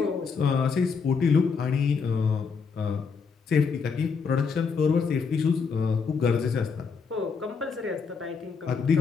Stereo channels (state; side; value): quieter; right; 5.4 dB